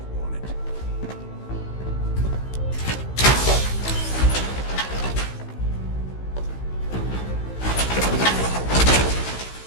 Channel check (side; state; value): right; late; 16 ms